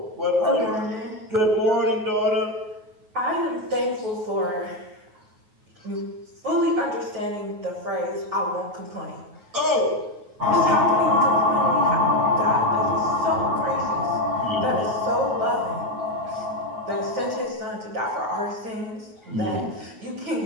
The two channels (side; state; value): left; late; 9.4 ms